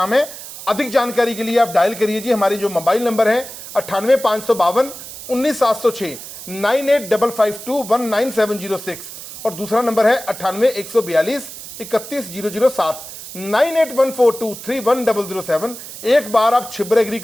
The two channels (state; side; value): noise; right; hiss, 13 dB below the sound